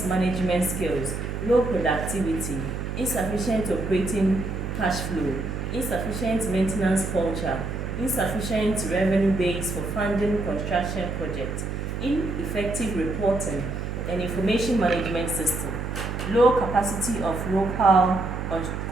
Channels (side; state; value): right; noise; hum, 4 dB below the sound